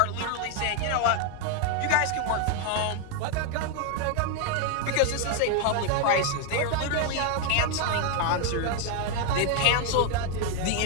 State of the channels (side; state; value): both; different; correlation 0.01